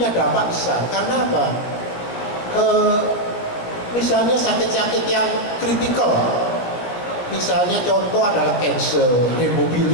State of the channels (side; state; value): right; late; 16 ms